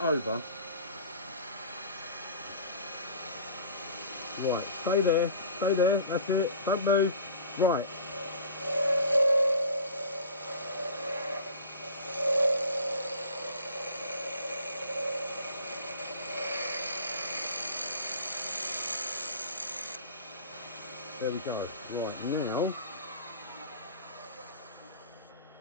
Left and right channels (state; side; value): inverted; both; correlation -0.42